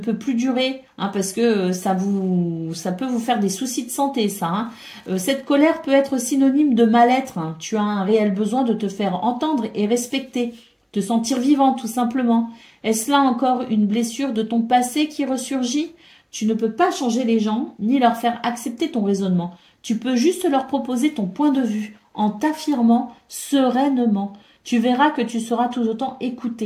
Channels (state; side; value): identical; both; correlation 1.00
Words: plus durer hein, parce que ça peut vous faire des soucis de santé, ça. Hein. Cette colère peut être synonyme de mal-être. Hein. Tu as un réel besoin de te faire entendre et respecter, te sentir vivant tout simplement. Est-ce là encore une blessure de ton passé qui ressurgit? Tu ne peux pas changer les gens ni leur faire accepter ton raisonnement. Tu peux juste leur proposer ton point de vue en t'affirmant sereinement. Tu verras que tu seras tout autant